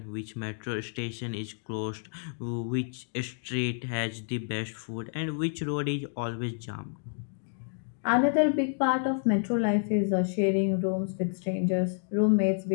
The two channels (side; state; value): right; silent; 58 dB below the other